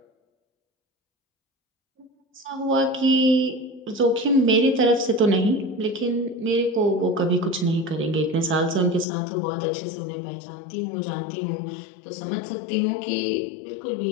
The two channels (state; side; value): drops out; right; at 9.1 s